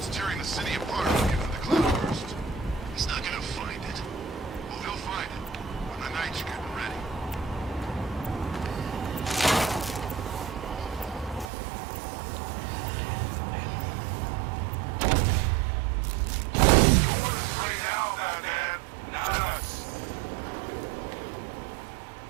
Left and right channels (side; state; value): left; drops out; at 11.5 s